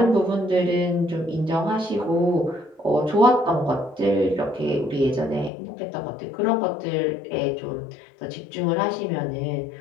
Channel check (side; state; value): right; drops out; at 5.5 s